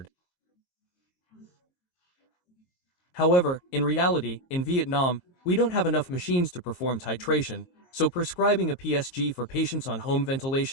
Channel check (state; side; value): late; right; 22 ms